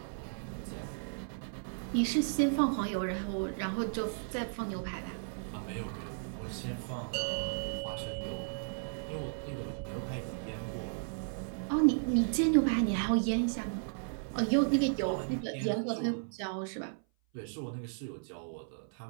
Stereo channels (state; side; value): silent; left; 55 dB below the other